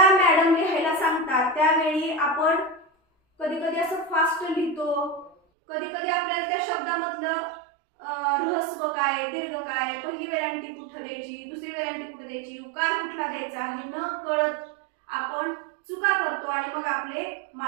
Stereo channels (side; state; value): left; drops out; at 5.4 s